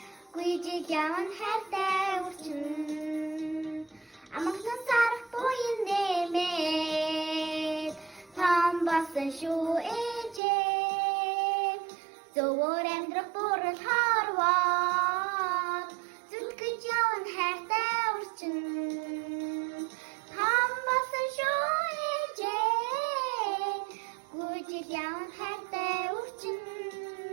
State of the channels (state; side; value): drops out; left; at 10.4 s